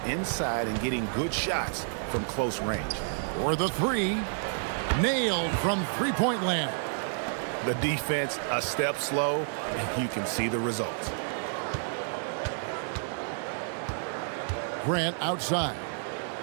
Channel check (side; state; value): left; silent; digital silence